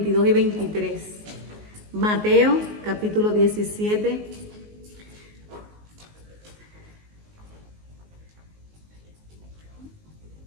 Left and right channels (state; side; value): late; left; 19 ms